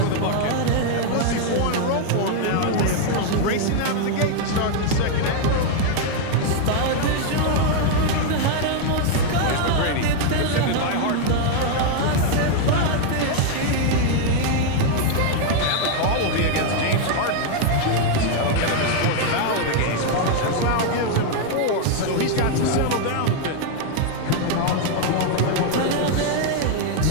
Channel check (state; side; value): different; both; correlation 0.00